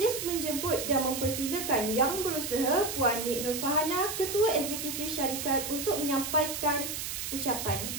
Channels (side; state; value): right; noise; hiss, 5 dB below the sound